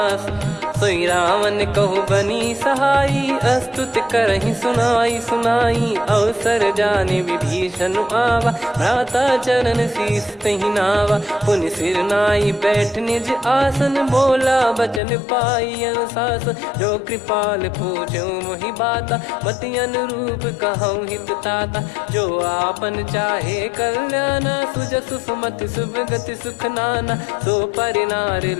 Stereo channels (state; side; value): drops out; right; at 15.0 s